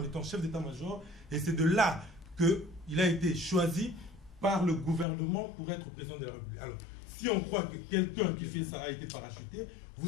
étant chef d'état-major, et c'est de là qu'il a été choisi par le gouvernement pour être président de la République. Alors, si on croit que quelqu'un qui fait ça a été parachuté, vous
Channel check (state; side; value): drops out; right; at 5.1 s